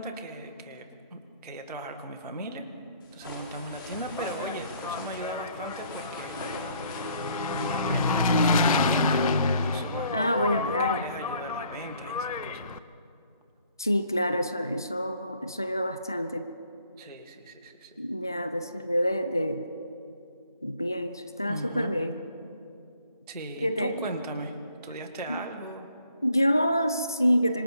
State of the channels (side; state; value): both; inverted; correlation -0.64